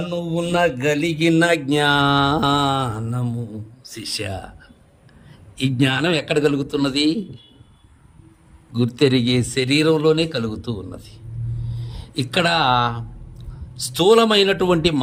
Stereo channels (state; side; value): identical; both; correlation 1.00